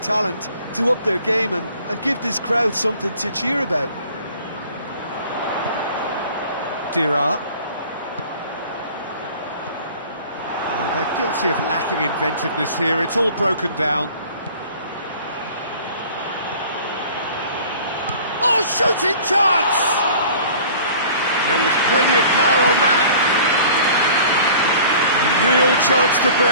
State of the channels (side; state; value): both; inverted; correlation -0.47